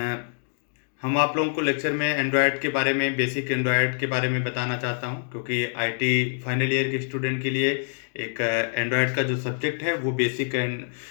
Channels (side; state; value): right; silent; digital silence